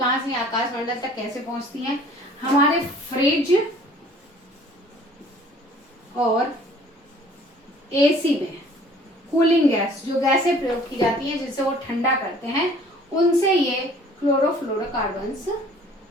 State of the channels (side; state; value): both; normal; correlation 0.53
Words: से, आकाशमंडल तक कैसे पहुंचती हैं? हमारे फ्रिज और AC में कूलिंग गैस, जो गैसें प्रयोग की जाती हैं जिससे वो ठंडा करते हैं, उनसे ये क्लोरोफ्लोरोकार्बन्स